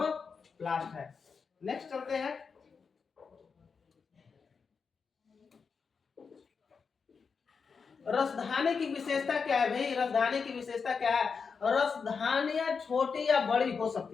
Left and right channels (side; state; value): right; quieter; 5.5 dB